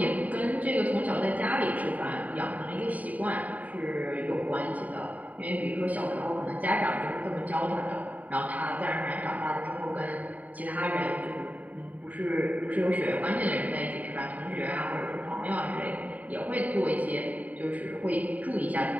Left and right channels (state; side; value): late; left; 0.072 ms